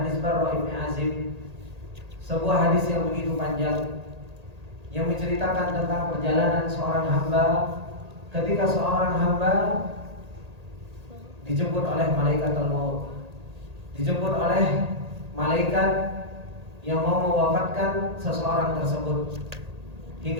Barra Ibn Azib, sebuah hadis yang begitu panjang, yang menceritakan tentang perjalanan seorang hamba ketika seorang hamba dijemput oleh malaikat al-maut, dijemput oleh malaikat yang mau mewafatkan seseorang tersebut,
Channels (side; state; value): left; late; 1.8 ms